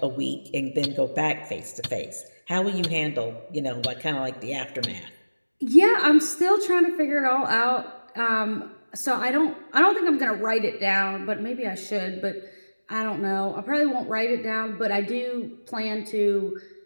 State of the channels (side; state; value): both; inverted; correlation -1.00